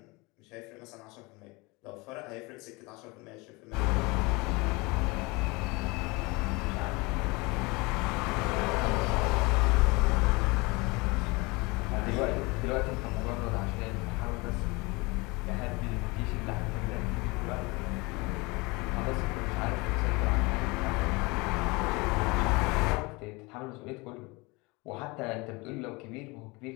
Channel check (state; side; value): quieter; right; 25.4 dB